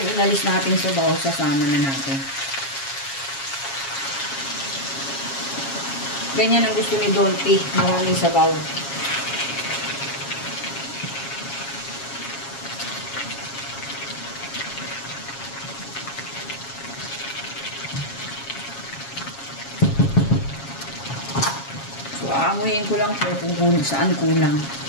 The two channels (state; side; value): late; right; 7.3 ms